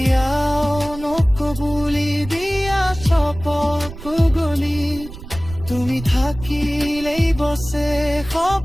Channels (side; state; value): right; noise; rumble, 14 dB below the sound